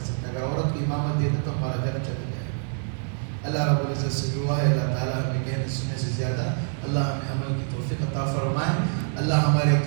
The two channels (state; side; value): silent; left; 56 dB below the other